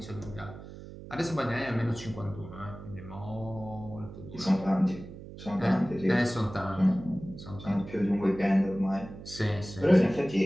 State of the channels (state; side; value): noise; right; hum, 14 dB below the sound